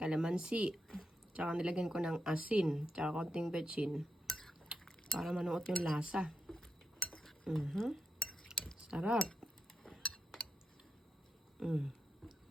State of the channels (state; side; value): normal; both; correlation 0.85